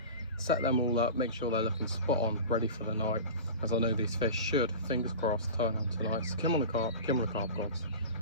set them all up, make sure they're looking spot on, ready for the night, as I know these fish should, fingers crossed, turn on tonight. So come on the carp gods.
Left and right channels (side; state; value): both; inverted; correlation -0.32